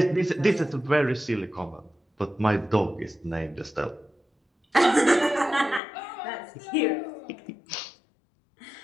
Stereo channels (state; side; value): drops out; right; at 5.8 s